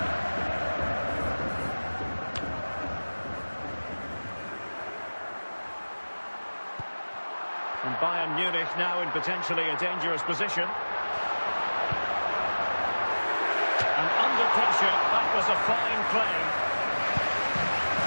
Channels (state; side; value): inverted; both; correlation -1.00